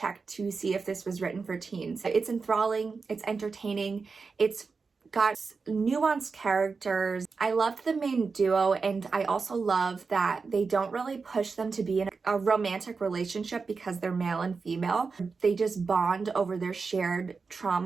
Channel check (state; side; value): quieter; left; 4.7 dB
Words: to see if this was written for teens. It's enthralling, it's entertaining, it's got nuanced characters. I loved the main duo, and I also love that they don't really push them to be in a romantic relationship because they're male and female. They just bond over their shared